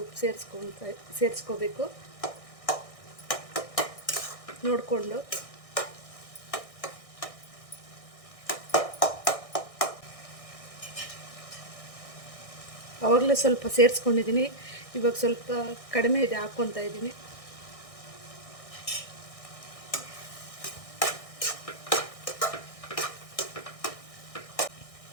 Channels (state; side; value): late; right; 1.6 ms